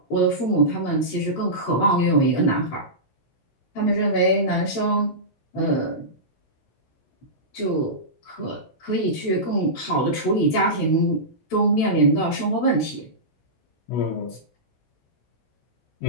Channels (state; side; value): late; right; 16 ms